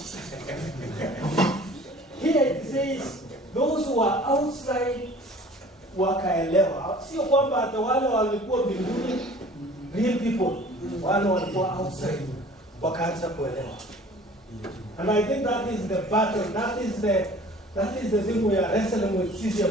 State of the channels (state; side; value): normal; both; correlation 0.48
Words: here it says, those who are outside wakaelewa. Sio kwamba hata wale walikuwa mbinguni, real people, wale walikuwa outside wakaanza kuelewa. And I think that is the battle, that is the thing we are wrestling with sisi